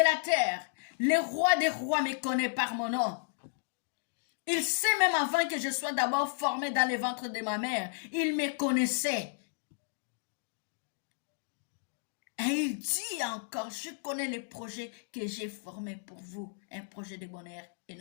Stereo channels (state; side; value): silent; right; digital silence